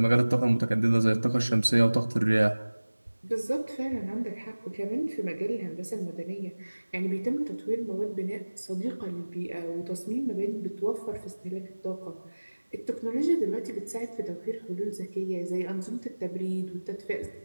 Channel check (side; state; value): both; inverted; correlation -1.00